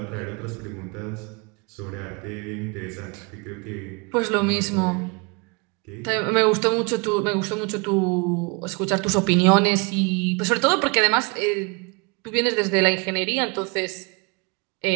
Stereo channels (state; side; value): quieter; left; 30.6 dB